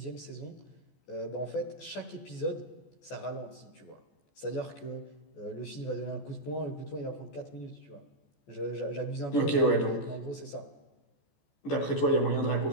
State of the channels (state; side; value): late; right; 14 ms